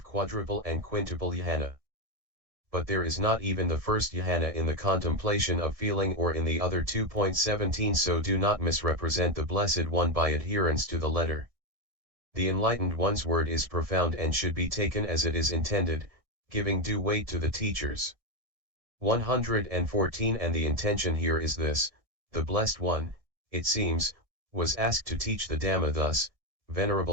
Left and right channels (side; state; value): left; late; 1.6 ms